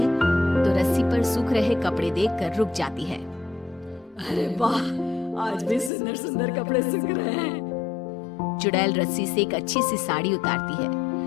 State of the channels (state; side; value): drops out; right; at 5.9 s